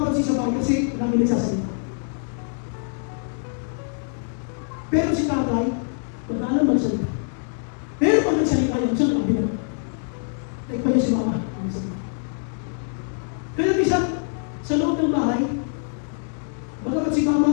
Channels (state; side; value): silent; right; 62 dB below the other